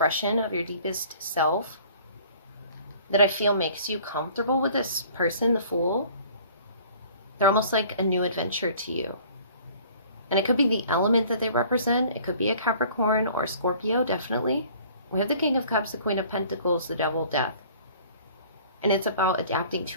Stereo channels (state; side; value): inverted; both; correlation -0.51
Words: of your deepest self that I feel makes you comfortable with this person, the Fool. They're almost like a new adventure to you. And it could be the element that they represent. It could be a Capricorn or a Scorpio, definitely. We have the King of Cups, the Queen of Pentacles, the Devil, Death. And it's about adapting